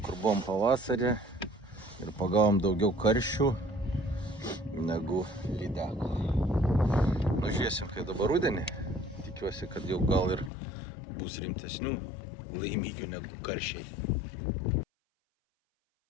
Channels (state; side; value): drops out; right; at 10.5 s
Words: kur buvom pavasarį ir pagavom daugiau karšių negu lydekų. Žiūrėsim, kai dabar rudenį. Tikiuosi, kad jau gal ir bus rimtesnių laimikių negu karšiai.